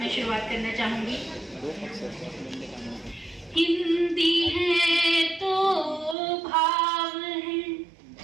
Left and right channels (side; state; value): left; drops out; at 6.2 s